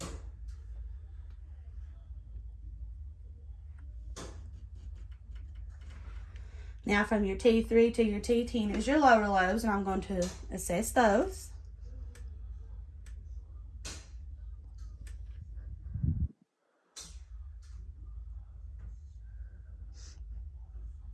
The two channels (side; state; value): both; identical; correlation 1.00